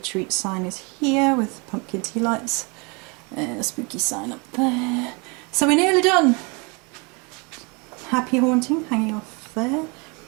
sign is here with pumpkin tea lights. A spooky sign up there. So we're nearly done. Happy haunting hanging off there.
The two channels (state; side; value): quieter; left; 30.7 dB